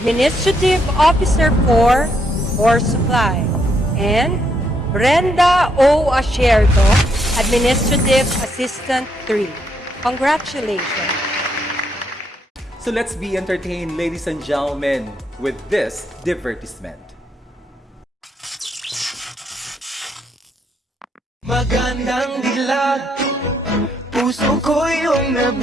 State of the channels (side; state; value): both; normal; correlation 0.75